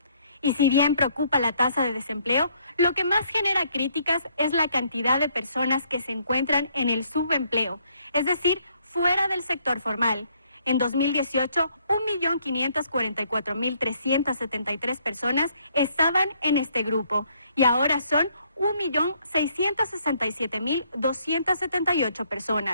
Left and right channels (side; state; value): both; inverted; correlation -0.67